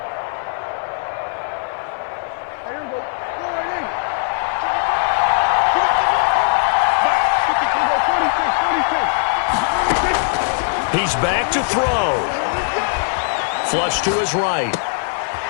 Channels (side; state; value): right; silent; 55 dB below the other